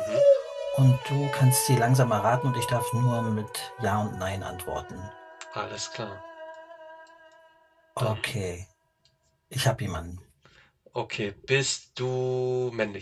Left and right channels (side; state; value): both; identical; correlation 1.00